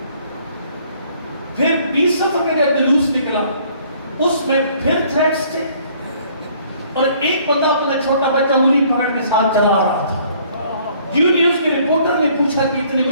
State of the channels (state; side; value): inverted; both; correlation -0.60